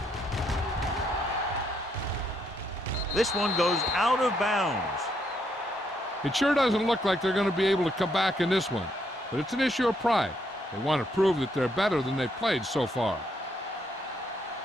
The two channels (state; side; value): normal; both; correlation 0.74